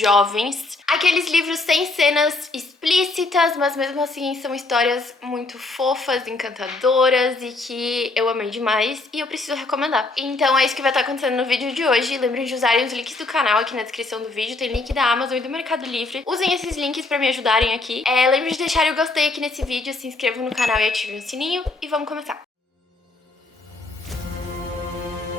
Aqueles livros sem cenas explícitas, mas mesmo assim são histórias muito fofas, encantadoras e que eu amei demais e eu preciso recomendar. Então é isso que vai estar acontecendo no vídeo de hoje. Lembrem de usarem os links do canal aqui na descrição do vídeo, tem link da Amazon e do Mercado Livre. Usem esses links pra me ajudarem aqui. Lembrem de deixarem o gostei aqui nesse vídeo, se inscrevam no canal e ativem o sininho e vamos começar.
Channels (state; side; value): quieter; right; 3.3 dB